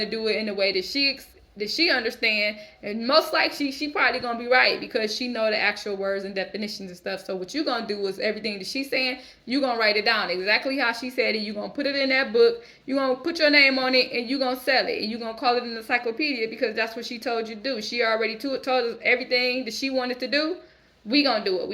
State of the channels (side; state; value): both; identical; correlation 1.00